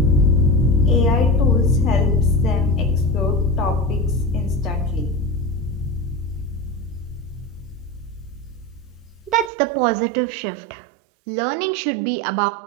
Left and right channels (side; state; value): left; drops out; at 9.5 s